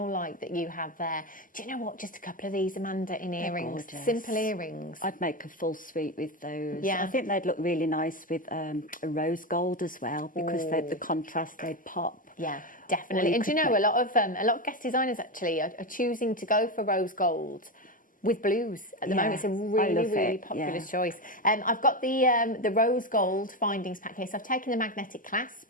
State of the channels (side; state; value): both; normal; correlation 0.14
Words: light that you have there. Do you know what? Just a couple of these, Amanda, in earrings, simple earrings. I'd make a full suite with those. Yeah. I think they'd look really nice with a rose gold as well, because the contrast, they'd pop. Yeah, definitely. And do you know, a lot of guest designers actually are choosing to go for rose gold with blues at the moment. It's a really popular choice. I've got the rose gold findings pack here. So I've taken the magnetic clasp